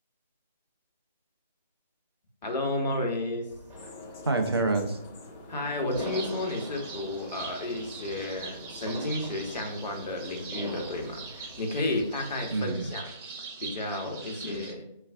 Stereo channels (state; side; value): inverted; both; correlation -0.46